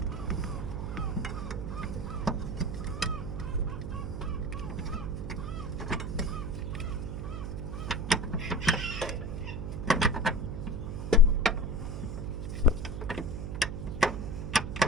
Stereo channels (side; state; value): right; noise; hum, 4 dB below the sound